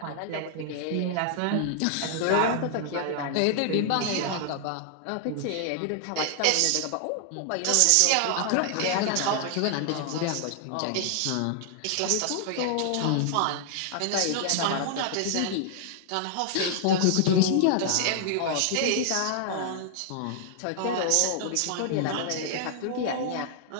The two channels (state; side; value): different; both; correlation -0.01